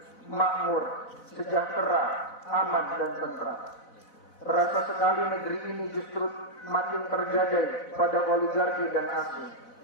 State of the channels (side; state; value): right; late; 4.0 ms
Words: makmur, sejahtera, aman dan tentram. Terasa sekali negeri ini justru makin tergadai pada oligarki dan asing.